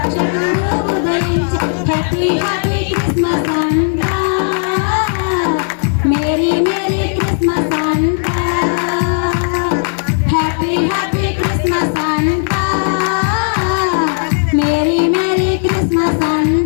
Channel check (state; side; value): silent; right; 64 dB below the other